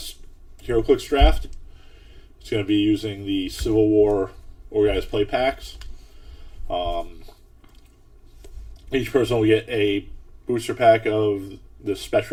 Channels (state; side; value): identical; both; correlation 1.00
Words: draft. It's going to be using the Civil War organized play packs. Each person will get a booster pack of the